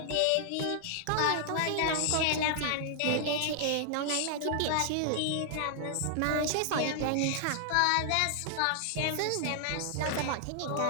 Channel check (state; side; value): different; both; correlation -0.01